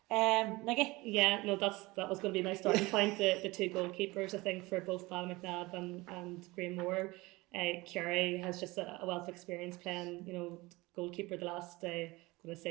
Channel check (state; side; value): quieter; left; 21.9 dB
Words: Nikki? Yeah, no, that was going to be my starting point. The 2 goalkeepers, I think, for both Balmacnob and Greenmore. Kerry has just a wealth of experience playing, goalkeeper the last, I'm going to